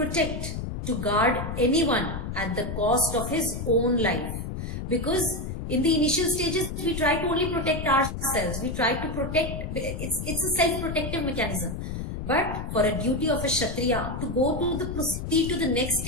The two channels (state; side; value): noise; left; rumble, 5 dB below the sound